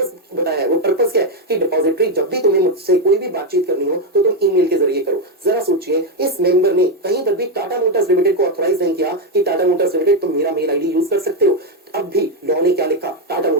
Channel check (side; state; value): both; normal; correlation 0.05